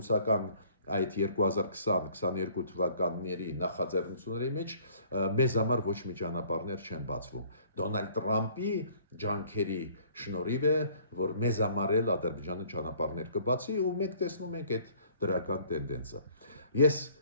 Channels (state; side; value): inverted; both; correlation -0.56